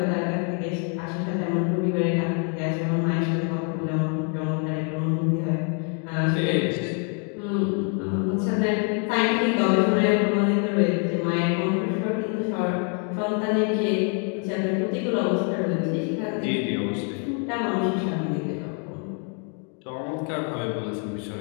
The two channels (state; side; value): quieter; right; 39.6 dB